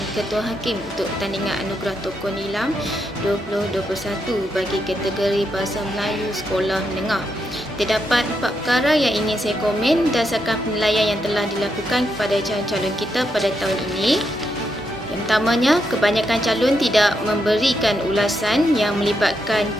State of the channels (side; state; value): both; normal; correlation 0.81